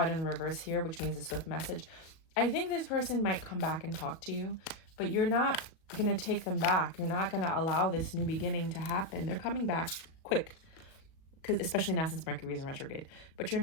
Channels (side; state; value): right; late; 37 ms